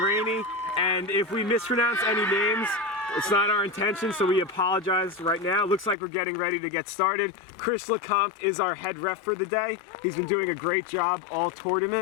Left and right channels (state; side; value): drops out; right; at 6.0 s